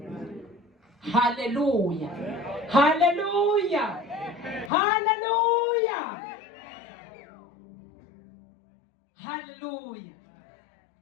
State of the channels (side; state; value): right; drops out; at 4.7 s